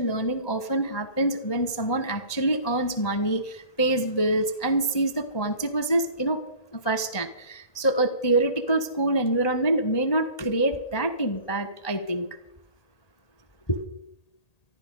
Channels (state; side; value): late; right; 1.8 ms